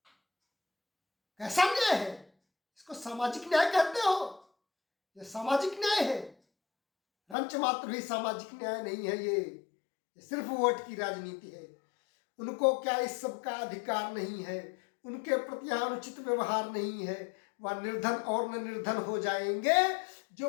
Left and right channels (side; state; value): right; drops out; at 7.4 s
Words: कैसा न्याय है? इसको सामाजिक न्याय कहते हो? ये सामाजिक न्याय है? रंच मात्र भी सामाजिक न्याय नहीं है, ये सिर्फ वोट की राजनीति है। उनको क्या इस सब का अधिकार नहीं है, उनके प्रति अनुचित व्यवहार नहीं है, वह निर्धन और न निर्धन हो जाएंगे।